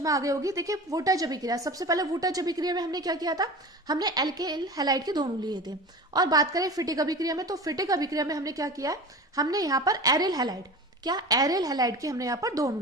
आ गई होगी। देखिए वोल्टेज अभिक्रिया, सबसे पहले वोल्टेज अभिक्रिया में हमने क्या किया था, हमने एल्किल हैलाइड के दोनों लिए थे। और बात करें फिटिक अभिक्रिया में, तो फिटिक अभिक्रिया में हमने क्या किया है, हमने यहाँ पर एरिल हैलाइड, क्या एरिल हैलाइड के हमने यहाँ पर दोनों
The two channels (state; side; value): normal; both; correlation 0.33